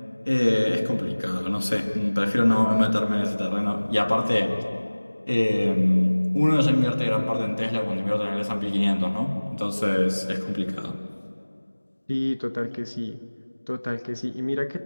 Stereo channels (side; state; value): both; inverted; correlation -1.00